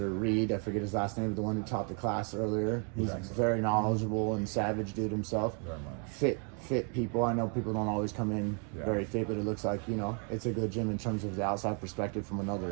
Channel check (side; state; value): left; quieter; 39.6 dB